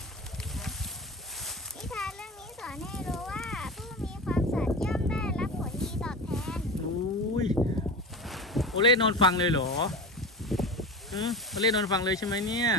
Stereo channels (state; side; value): normal; both; correlation 0.27